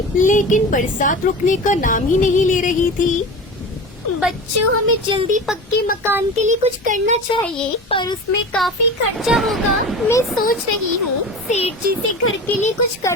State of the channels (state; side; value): normal; both; correlation 0.31